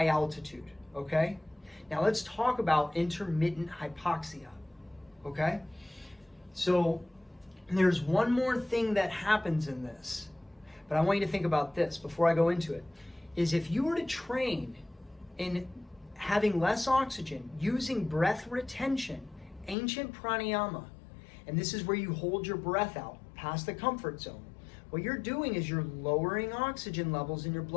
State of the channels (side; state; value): right; drops out; at 19.8 s